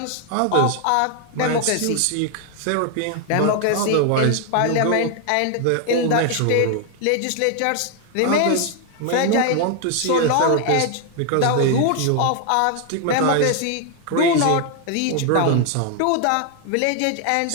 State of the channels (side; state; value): both; different; correlation 0.00